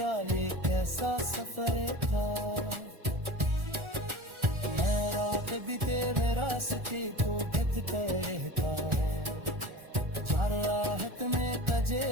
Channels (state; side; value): late; left; 1.4 ms